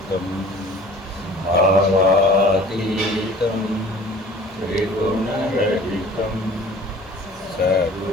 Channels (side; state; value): both; normal; correlation 0.47